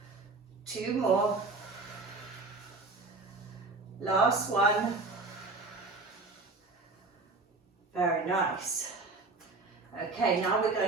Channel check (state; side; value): quieter; left; 3.6 dB